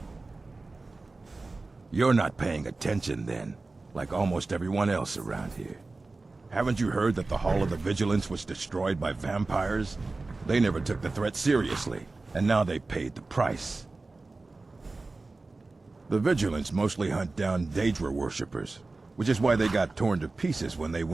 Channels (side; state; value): left; quieter; 3.5 dB